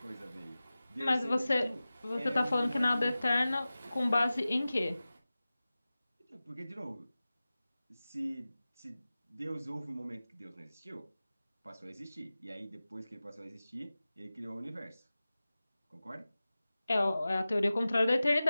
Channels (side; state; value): both; inverted; correlation -0.96